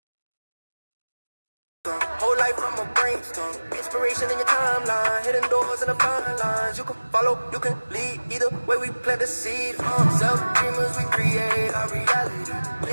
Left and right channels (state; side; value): inverted; both; correlation -1.00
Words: Whole life from a brainstorm. Inspiration in your timeline. Hidden doors and the fine lines. You can follow, you can lead. Either way we plant the seed. Self-dreamers, we create our reality.